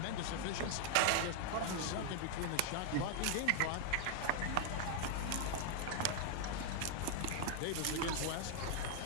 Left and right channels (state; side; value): different; both; correlation 0.00